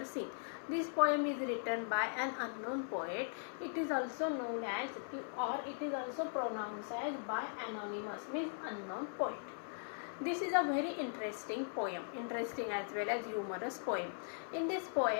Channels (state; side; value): silent; right; 51 dB below the other